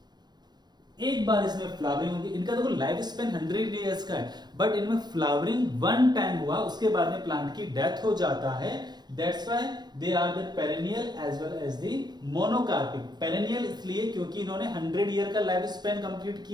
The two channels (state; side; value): late; left; 0.20 ms